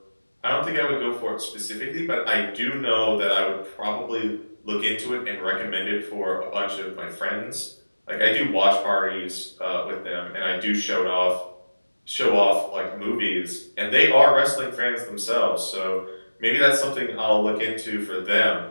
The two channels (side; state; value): both; inverted; correlation -1.00